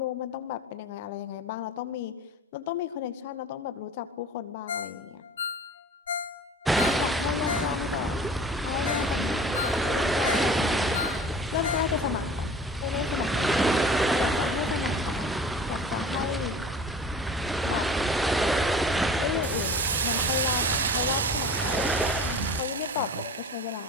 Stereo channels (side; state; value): both; normal; correlation 0.41